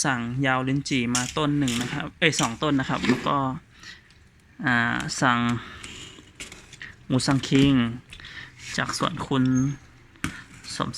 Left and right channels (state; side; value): identical; both; correlation 1.00